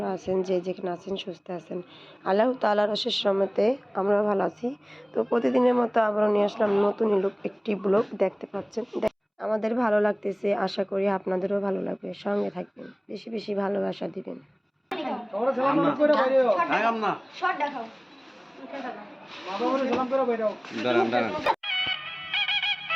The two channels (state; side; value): identical; both; correlation 1.00